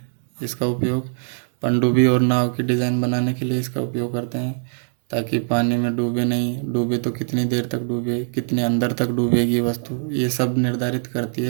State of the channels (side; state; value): left; silent; digital silence